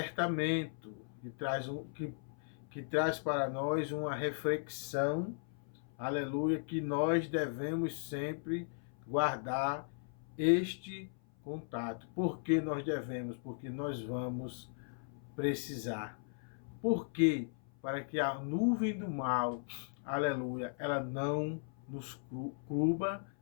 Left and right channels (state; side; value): silent; right; 53 dB below the other